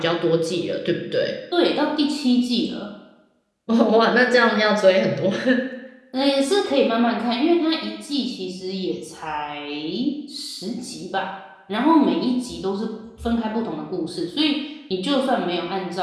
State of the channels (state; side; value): identical; both; correlation 1.00